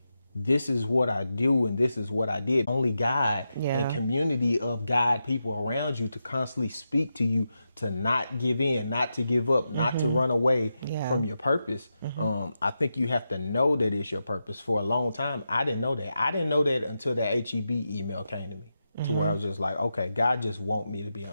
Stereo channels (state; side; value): inverted; both; correlation -0.88